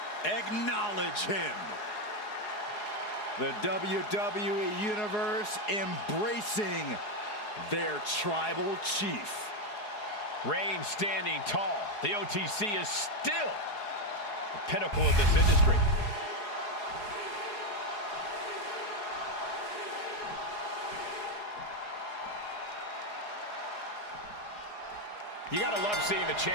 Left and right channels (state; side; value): late; right; 4.8 ms